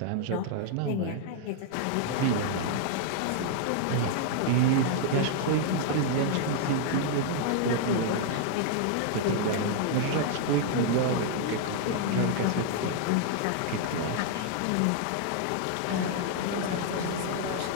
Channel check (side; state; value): both; different; correlation -0.01